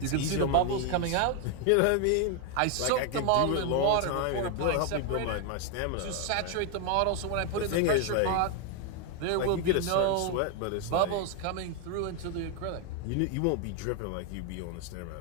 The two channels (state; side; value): different; both; correlation 0.01